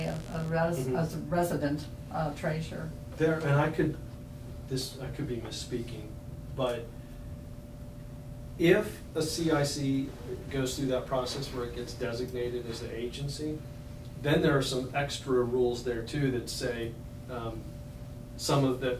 as a resident treasurer. There, and I could be misspeaking, but if a CIC goes through that process where it gets designated as an agency, then there are some extra rules there too that say,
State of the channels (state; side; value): identical; both; correlation 1.00